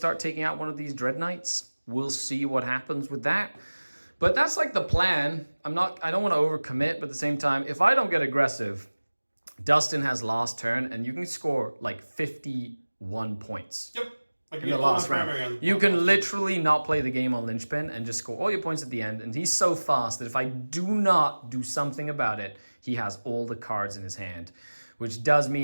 taking out one of these Dreadknights. We'll see what happens with that. But that's like the plan. I don't want to overcommit, but at the same time, if I don't get aggressive, Dustin has last turn and you can score like 51 points. Yep. Like in the last round. You can literally not play the game on linchpin and just score all your points at the end. And he's so fast that if I do not do something about it, he has all the cards in his hand, which does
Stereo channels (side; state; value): both; inverted; correlation -1.00